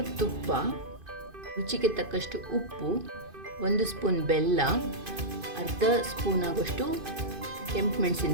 ತುಪ್ಪ, ರುಚಿಗೆ ತಕ್ಕಷ್ಟು ಉಪ್ಪು, 1 ಸ್ಪೂನ್ ಬೆಲ್ಲ, ಅರ್ಧ ಸ್ಪೂನ್ ಆಗೋಷ್ಟು ಕೆಂಪು ಮೆಣಸಿನ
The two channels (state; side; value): late; left; 2.5 ms